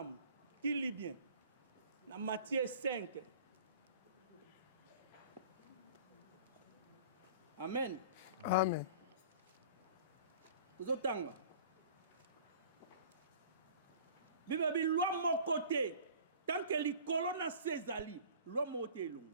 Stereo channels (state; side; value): inverted; both; correlation -0.44